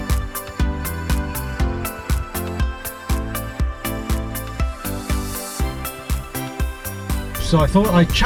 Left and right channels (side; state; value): both; identical; correlation 1.00